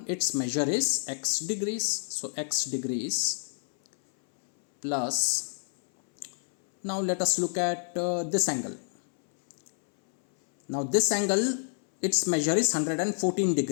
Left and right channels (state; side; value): silent; right; 59 dB below the other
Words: its measure is x degrees. So x degrees plus, now let us look at this angle. Now this angle, its measure is 114